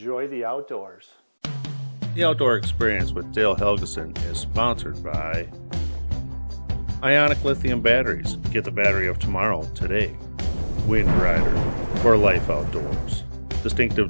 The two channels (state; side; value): inverted; both; correlation -1.00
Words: the outdoors. The Outdoor Experience with Dale Helgeson is sponsored by Ionic Lithium Batteries. Get the battery of tomorrow today. Wind Rider for life outdoors. Distinctive